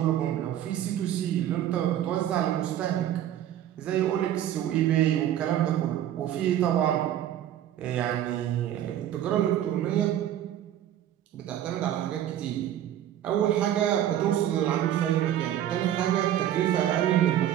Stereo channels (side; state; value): left; quieter; 11.5 dB